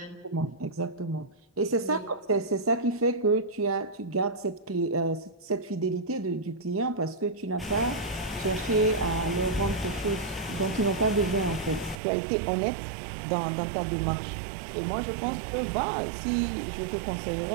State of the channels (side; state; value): left; drops out; at 12.0 s